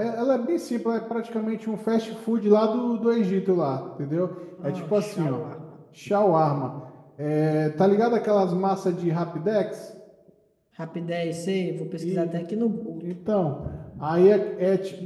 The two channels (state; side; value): identical; both; correlation 1.00